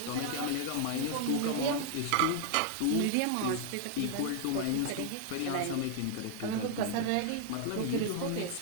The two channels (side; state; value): both; different; correlation 0.00